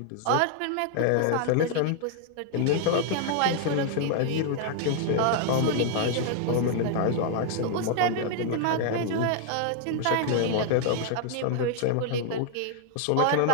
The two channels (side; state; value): both; different; correlation 0.00